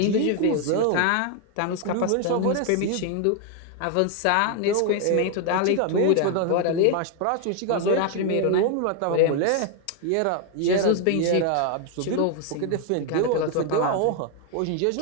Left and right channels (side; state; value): both; different; correlation 0.01